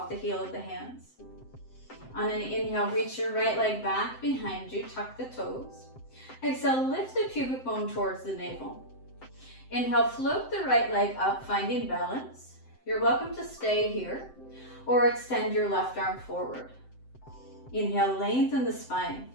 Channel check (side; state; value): right; late; 7.7 ms